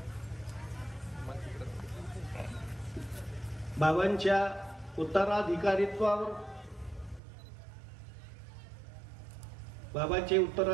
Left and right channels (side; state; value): left; drops out; at 7.2 s